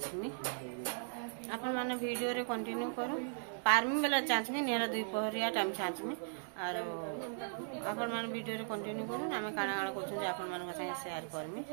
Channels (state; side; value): silent; left; digital silence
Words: अपन माने वीडियो रे कंटिन्यू करू पारमी बेला चाचमी नेला 2 पहरिया टाइम चाचमी और अपन माने वीडियो रे कंटिन्यू करू आमे काना काना करछु जे अपन माने संगे शेयर करमी